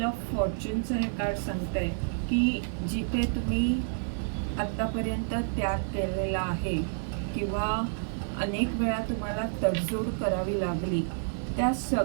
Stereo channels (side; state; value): left; silent; digital silence